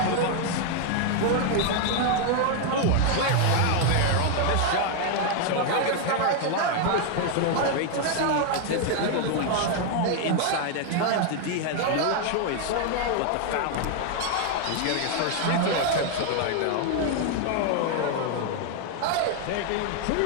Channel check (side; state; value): both; different; correlation 0.00